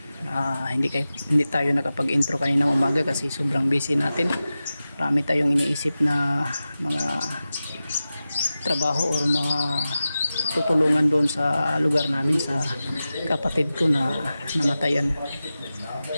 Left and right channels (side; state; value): both; inverted; correlation -0.94